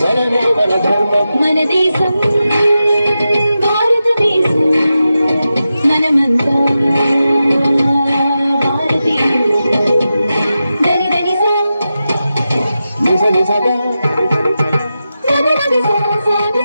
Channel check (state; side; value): inverted; both; correlation -0.91